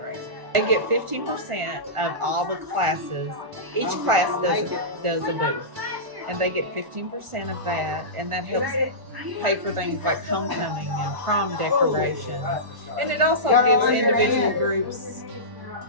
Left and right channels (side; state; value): left; late; 1.1 ms